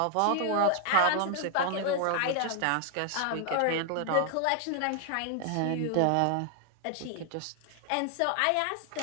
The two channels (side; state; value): both; different; correlation 0.00